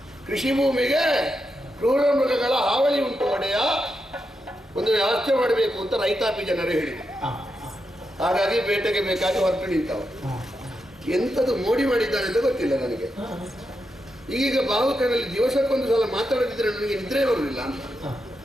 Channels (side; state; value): both; normal; correlation 0.86